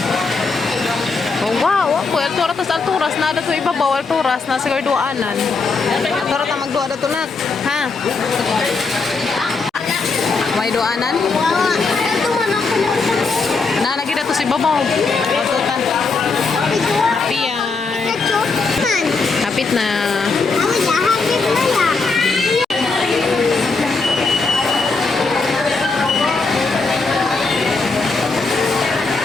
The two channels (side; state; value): right; quieter; 4.2 dB